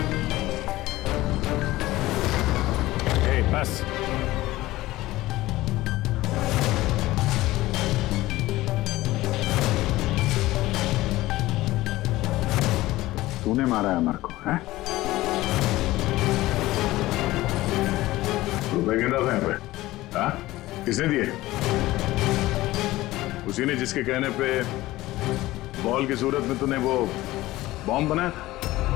बस तूने मारा है अमर को, हैं? रुपए गिन रहा था यहाँ पे? हाँ? किसने दिए? उसी ने जिसके कहने पे बॉल की सूरत में तूने वो बॉम्ब बनाया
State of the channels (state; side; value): quieter; right; 17.4 dB